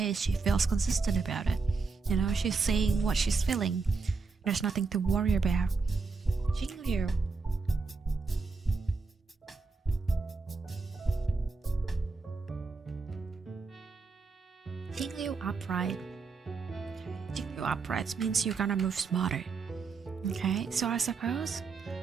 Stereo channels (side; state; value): left; quieter; 4.4 dB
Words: she feels consistent about it. You know, she's saying what she's feeling. There's nothing to worry about. Jingyu. Jingyu upright. Jingyu upright means you're gonna move smarter. Okay, so I suppose